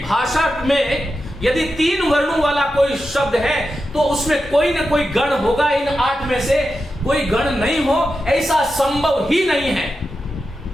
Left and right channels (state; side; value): normal; both; correlation 0.90